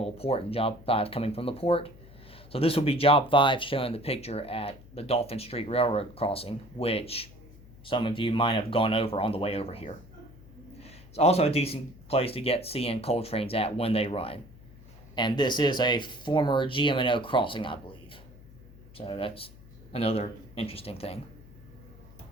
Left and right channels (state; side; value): noise; left; hum, 21 dB below the sound